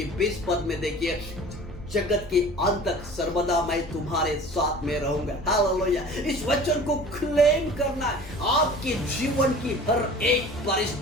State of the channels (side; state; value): left; noise; hum, 22 dB below the sound